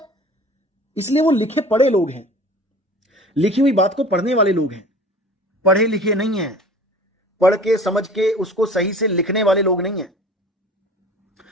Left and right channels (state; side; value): normal; both; correlation 0.43